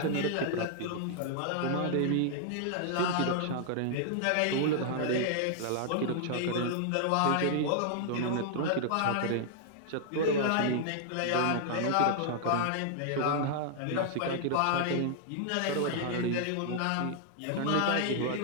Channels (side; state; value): both; different; correlation -0.01